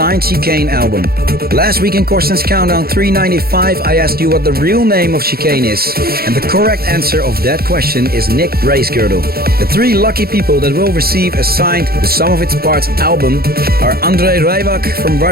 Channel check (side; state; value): left; late; 0.44 ms